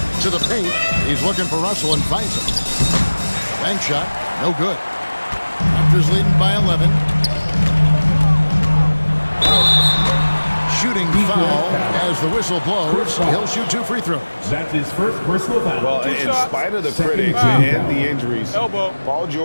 To the paint. He's looking for Russell and finds him. Bank shot. No good. Raptors leading by 11. Shooting foul as the whistle blows. He'll shoot 2 free throws. That's his first personal foul. Well, in spite of the critics and the injuries, Paul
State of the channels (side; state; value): both; inverted; correlation -1.00